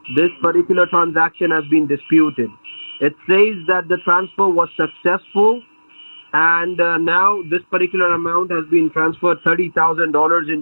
This particular transaction has been disputed. It says that the transfer was successful, and now this particular amount has been transferred $30,000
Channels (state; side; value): inverted; both; correlation -1.00